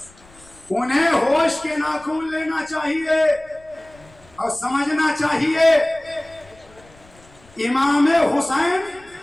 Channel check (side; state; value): left; noise; rumble, 27 dB below the sound